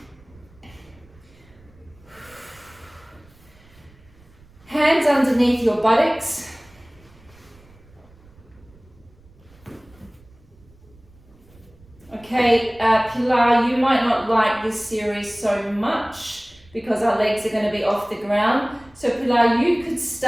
Hands underneath your buttocks. Okay, Pilar, you might not like this series so much because our legs are going to be off the ground. So Pilar, you could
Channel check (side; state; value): right; noise; rumble, 27 dB below the sound